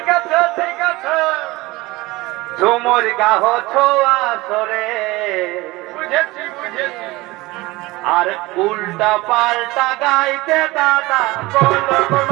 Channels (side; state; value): left; quieter; 20.8 dB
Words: আছে ঠিক আছে, ঝুমুর গাহ ছোয়া সরে, বুঝেছি বুঝেছি, আর উল্টা পাল্টা গাইতে দাদা বলক